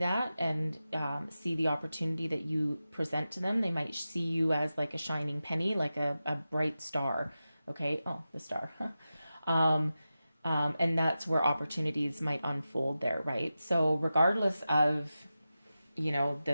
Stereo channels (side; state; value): both; inverted; correlation -0.93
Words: and see the opportunity that you present to them, they might see you as like a shining penny, like a bright star, okay, oh, the star, and that's where opportunities might unfold there, right? So regardless of,